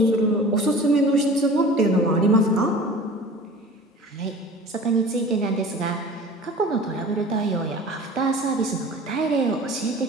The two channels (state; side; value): normal; both; correlation 0.41